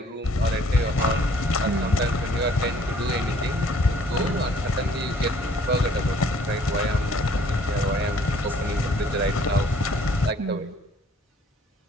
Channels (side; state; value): both; normal; correlation 0.58